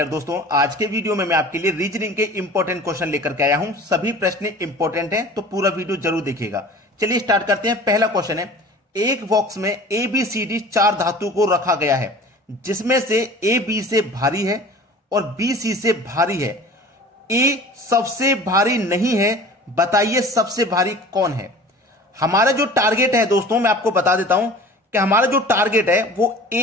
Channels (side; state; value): both; normal; correlation 0.42